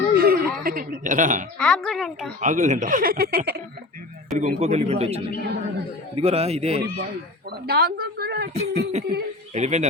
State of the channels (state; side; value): quieter; right; 3.0 dB